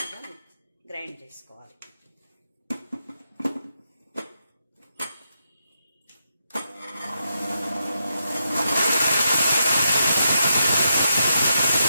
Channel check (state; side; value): inverted; both; correlation -0.83